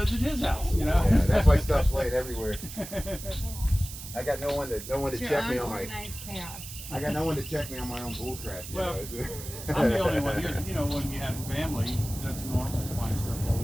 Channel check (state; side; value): noise; right; hiss, 11 dB below the sound